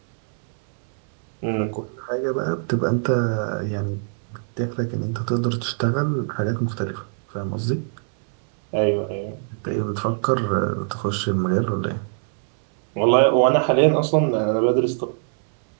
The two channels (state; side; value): silent; left; digital silence